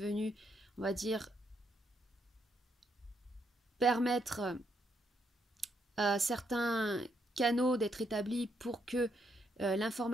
on va dire, permettre à certains canaux d'être établis pour que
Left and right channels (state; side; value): normal; both; correlation 0.76